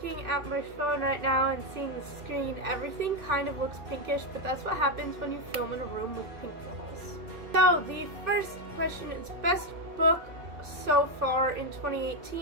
at my phone right now and seeing the screen, everything kind of looks pinkish, but that's what happens when you film in a room with pink walls. So, the first question is best book so far in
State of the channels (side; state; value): left; late; 2.6 ms